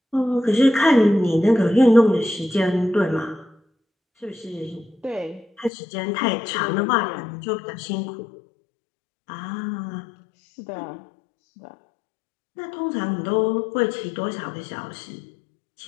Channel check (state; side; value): drops out; right; at 5.7 s